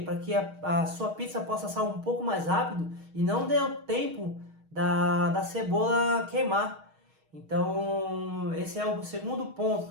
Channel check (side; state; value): left; late; 6.4 ms